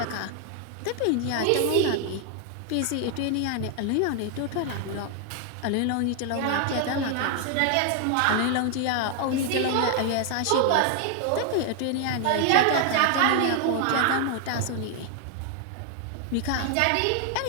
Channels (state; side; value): different; both; correlation 0.00